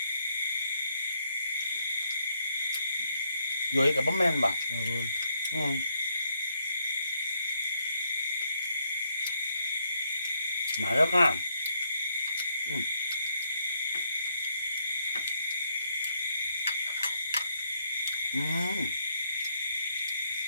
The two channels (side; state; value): both; inverted; correlation -0.74